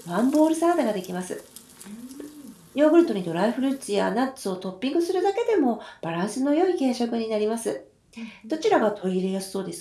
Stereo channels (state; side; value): identical; both; correlation 1.00